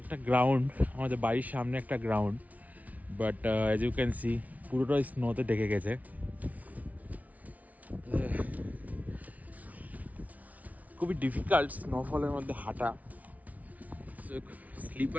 গ্রাউন্ড, আমাদের বাড়ির সামনে একটা ground, but as you can see পুরোটাই স্নোতে ঢেকে গেছে। খুবই ডিফিকাল্ট স্নোফলের মধ্যে হাঁটা,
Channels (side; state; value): left; late; 0.071 ms